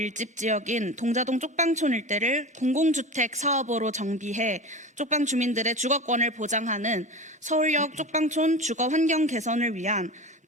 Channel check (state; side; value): normal; both; correlation 0.30